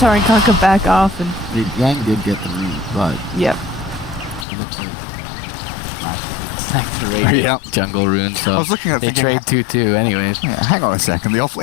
and Kunkka back off, and Yang did get the lead, but yep. he looks like Like the raid jungle rune, so I was looking at they trade 2-2 anyways. Yeah, hang on a second. The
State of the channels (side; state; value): right; drops out; at 4.5 s